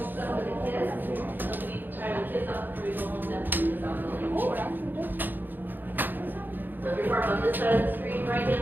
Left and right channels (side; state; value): left; late; 0.090 ms